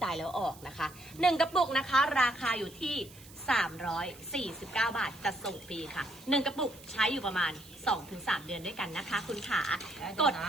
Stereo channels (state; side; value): noise; right; hiss, 20 dB below the sound